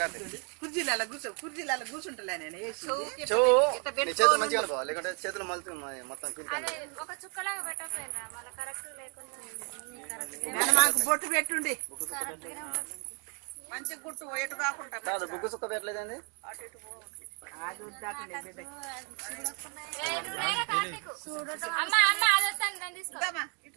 కుర్జీలలో కూర్చుంటలే నేను చేతులు మంచిగా అనుకో, లేకుంటే చేతులు మలుతు మొత్తం మాకు బొట్టు పెట్టుండి మంచి గుట్టు ఎటు కాకుండా కాదు. బుగ్గు సుక్క పెట్టలేదండి.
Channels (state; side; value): quieter; left; 37.0 dB